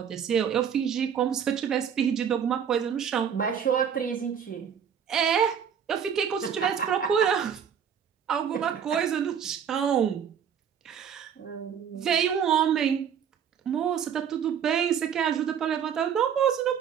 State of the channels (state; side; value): quieter; left; 8.0 dB